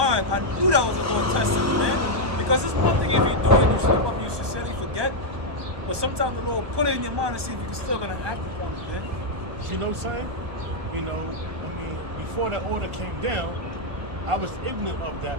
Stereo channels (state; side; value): late; left; 1.2 ms